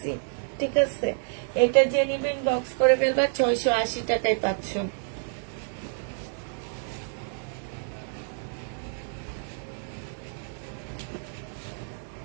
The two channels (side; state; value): left; silent; digital silence